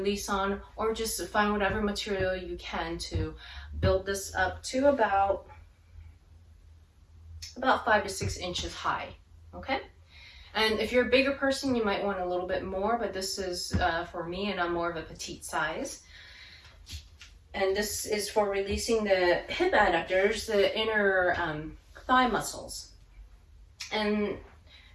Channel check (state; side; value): identical; both; correlation 1.00